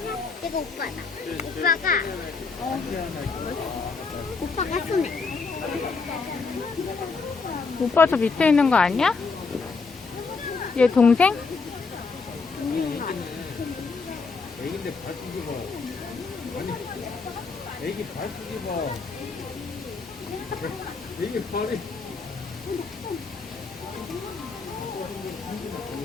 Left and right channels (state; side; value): quieter; right; 4.5 dB